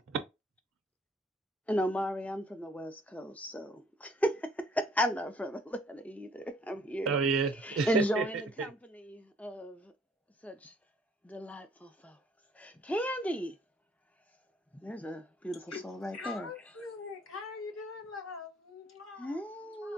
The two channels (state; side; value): normal; both; correlation 0.61